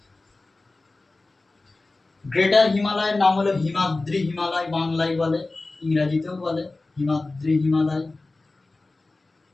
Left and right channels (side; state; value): right; quieter; 3.3 dB